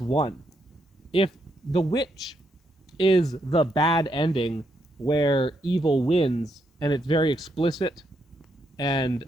won. If the witch is the bad ending where evil wins and it's very explicit and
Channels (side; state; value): both; normal; correlation 0.78